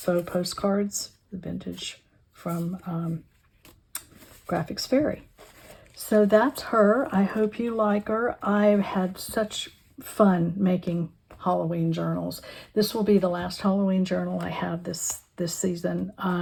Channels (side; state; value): both; identical; correlation 1.00